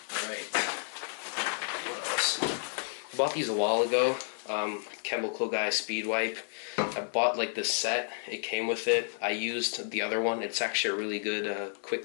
Alright, what else? I bought these a while ago. Chemical Guy Speed Wipe. I bought like this set. It came with it. I used the other one. It's actually a really good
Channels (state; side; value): silent; right; digital silence